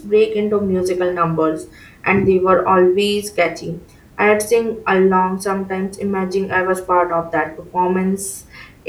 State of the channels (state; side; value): identical; both; correlation 1.00